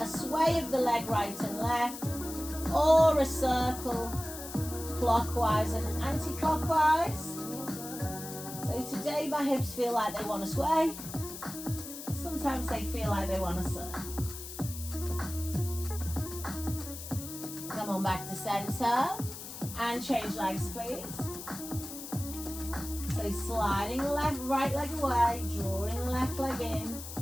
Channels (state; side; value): noise; left; hiss, 10 dB below the sound